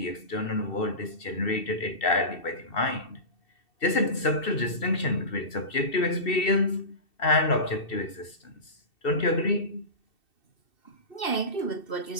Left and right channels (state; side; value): late; right; 2.7 ms